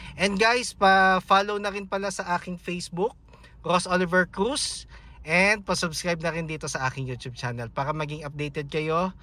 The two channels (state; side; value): identical; both; correlation 1.00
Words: And guys, pa-follow na rin pala sa aking Facebook, Ross Oliver Cruz, and pa-subscribe na rin dito sa aking YouTube channel para maging updated kayo